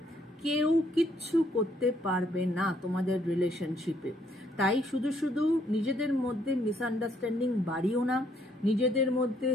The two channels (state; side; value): normal; both; correlation 0.69